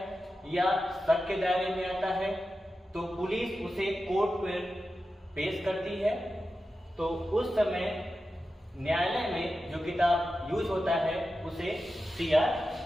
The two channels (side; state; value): both; normal; correlation 0.92